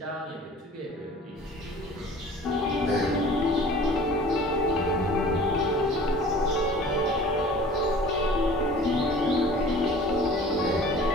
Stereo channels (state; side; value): normal; both; correlation 0.45